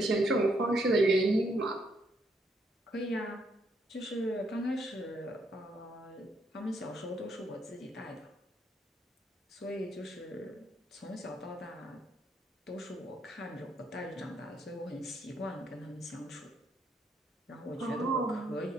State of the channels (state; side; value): normal; both; correlation 0.74